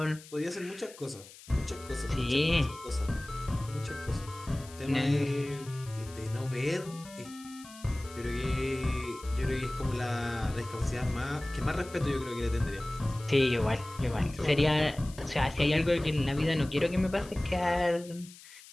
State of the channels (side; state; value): left; noise; hiss, 19 dB below the sound